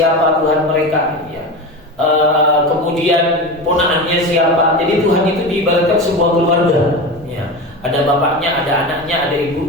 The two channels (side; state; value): both; normal; correlation 0.25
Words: Tuhan mereka. Ya. Kemudian ponakannya siapa. Jadi Tuhan itu diibaratkan sebuah keluarga. Ya. Ada bapaknya, ada anaknya, ada